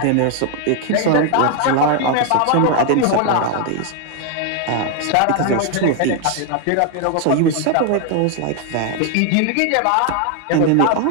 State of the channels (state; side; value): different; both; correlation 0.00